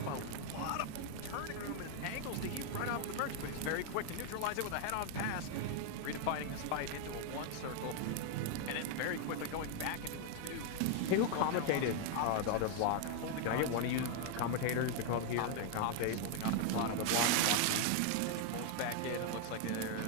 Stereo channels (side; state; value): both; different; correlation 0.00